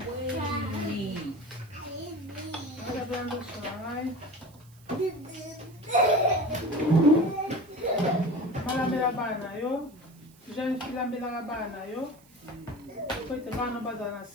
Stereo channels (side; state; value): right; noise; hiss, 28 dB below the sound